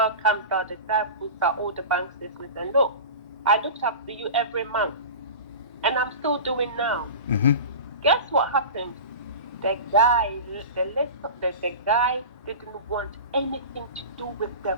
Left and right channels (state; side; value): inverted; both; correlation -0.31